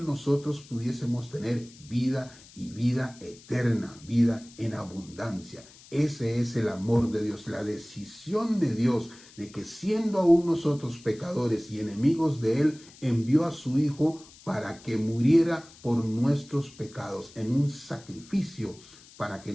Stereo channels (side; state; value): left; noise; hiss, 22 dB below the sound